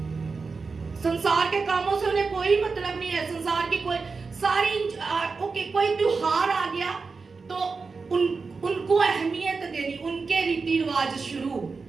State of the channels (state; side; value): quieter; left; 4.5 dB